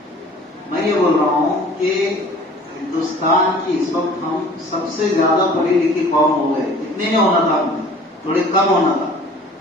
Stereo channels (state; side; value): normal; both; correlation 0.48